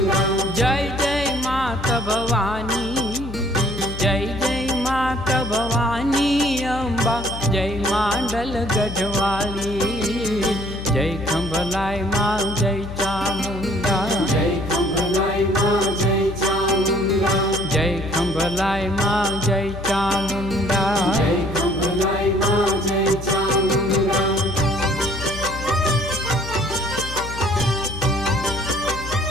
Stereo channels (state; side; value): noise; left; hum, 10 dB below the sound